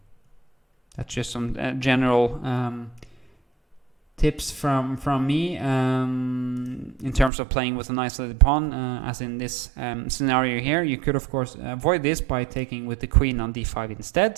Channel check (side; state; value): left; drops out; at 7.3 s